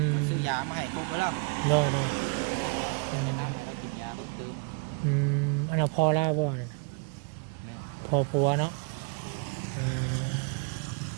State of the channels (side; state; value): left; quieter; 31.6 dB